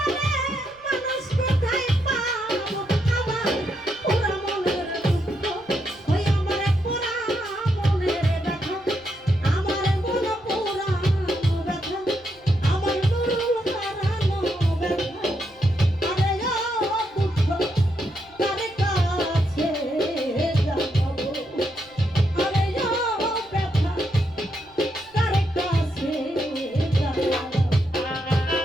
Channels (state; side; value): noise; right; rumble, 30 dB below the sound